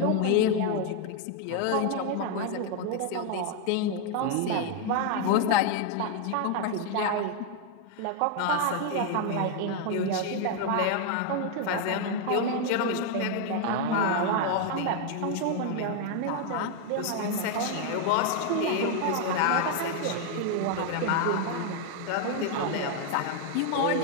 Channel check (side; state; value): both; different; correlation 0.01